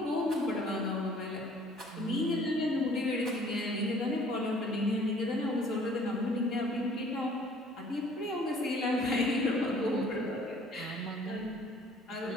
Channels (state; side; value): normal; both; correlation 0.55